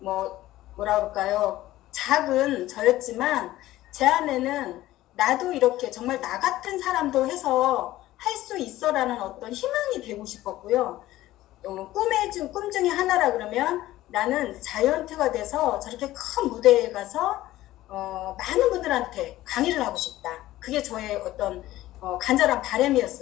그럴까요? 작은 저였지만 제 안에는 나도 이렇게 정말 나 같은 사람도 해서 할 수 있어라는 어떤 희망이 되고 싶었고요. 꿈 중에 하나라 그러면 나는 자이언트가 돼서 저렇게 큰 무대에 가서 많은 분들한테 강의를 하고 싶다. 그게 저의 어떤 간절한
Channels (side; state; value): right; quieter; 15.6 dB